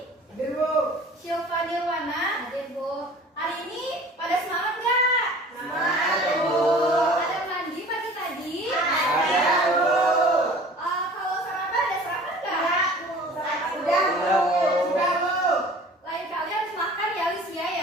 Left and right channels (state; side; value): normal; both; correlation 0.46